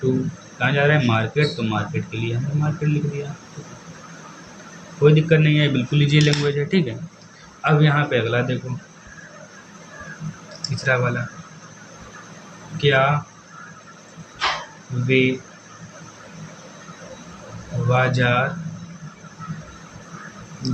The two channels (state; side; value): identical; both; correlation 1.00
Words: टू कहाँ जा रहा है, मार्केट, तो मार्केट के लिए हमने मार्केट लिख दिया, ठीक है। कोई दिक्कत नहीं है, बिल्कुल ईजी लैंग्वेज है, ठीक है। अब यहाँ पे अगला देखो, तीसरा वाला, क्या वे बाजार